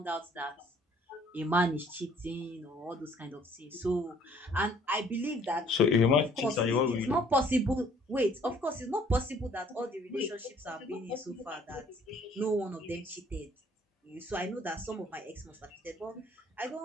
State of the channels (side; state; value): both; normal; correlation 0.59